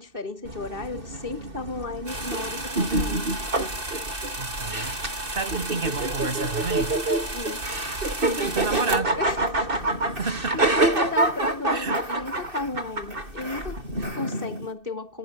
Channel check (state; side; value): late; left; 2.6 ms